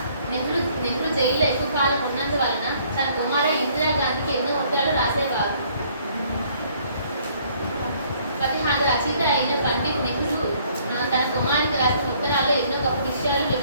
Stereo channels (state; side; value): inverted; both; correlation -0.62